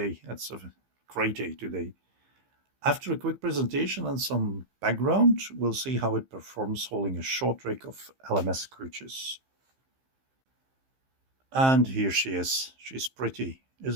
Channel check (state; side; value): late; left; 15 ms